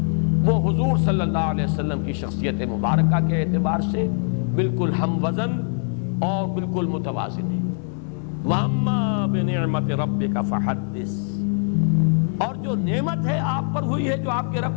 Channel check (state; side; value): silent; right; 56 dB below the other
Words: وہ حضور صلی اللہ علیہ وسلم کی شخصیت مبارکہ کے اعتبار سے بالکل ہم وزن اور بالکل متوازن ہے۔ وَأَمَّا بِنِعْمَةِ رَبِّكَ فَحَدِّثْ، اور جو نعمت ہے آپ پر ہوئی ہے جو آپ کے